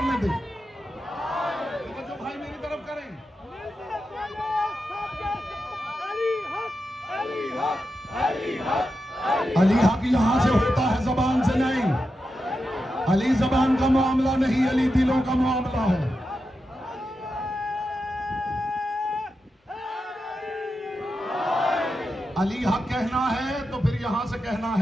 दे। जो भाई मेरी तरफ करें, अली हक यहां से होता है, जबान से नहीं। अली जबान का मामला नहीं, अली दिलों का मामला है। अली हक कहना है तो फिर यहां से कहना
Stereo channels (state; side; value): normal; both; correlation 0.89